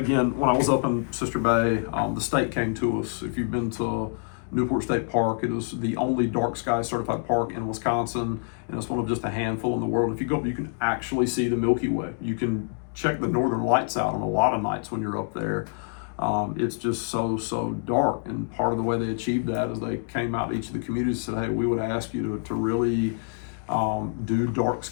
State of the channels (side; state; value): right; silent; 58 dB below the other